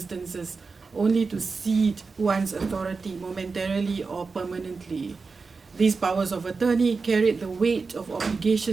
only to cede one's authority momentarily or permanently. These powers of attorney carried the weight of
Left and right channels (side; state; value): left; quieter; 4.5 dB